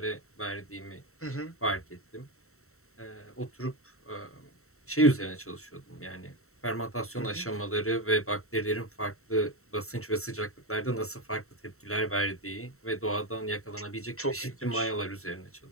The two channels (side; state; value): right; late; 0.63 ms